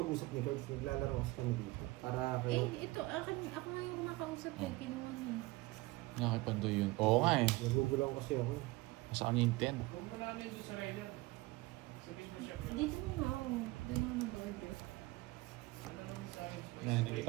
ni Cards. Naglalaro kasi kami dito. Para kayo... Ito, ako nga yung nakausap eh. Kinuha niya. Nakipandoy yun. Oo nga eh. Nagugulang kasi ako. Masaan yung 10? Huwag mo namin doon sa Ryder. Sabihin mo siya. Dito na nga ako. Doon ako mag-order. Ano naman sa akin? Yan, nakita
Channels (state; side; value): quieter; left; 21.0 dB